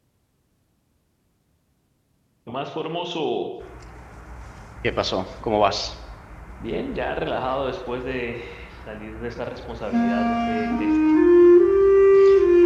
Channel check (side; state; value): both; identical; correlation 1.00